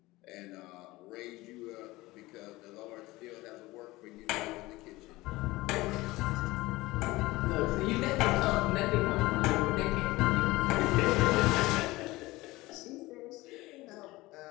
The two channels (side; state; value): right; quieter; 19.8 dB